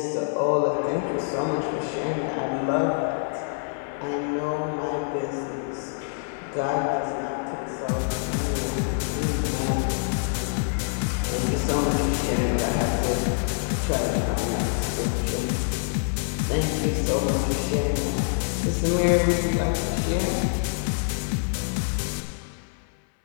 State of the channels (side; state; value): right; silent; 61 dB below the other